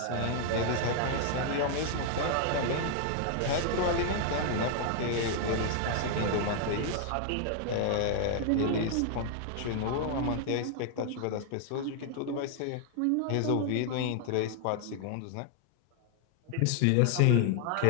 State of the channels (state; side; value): different; both; correlation 0.00